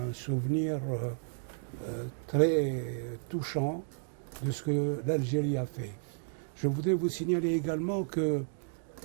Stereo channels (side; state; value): left; silent; digital silence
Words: souvenir très touchant de ce que l'Algérie a fait. Je voudrais vous signaler également que